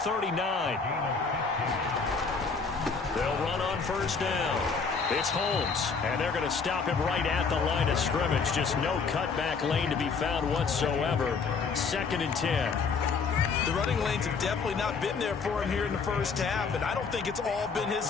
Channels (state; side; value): quieter; right; 5.1 dB